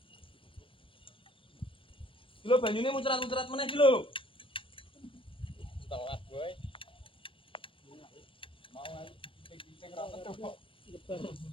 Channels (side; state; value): right; late; 0.25 ms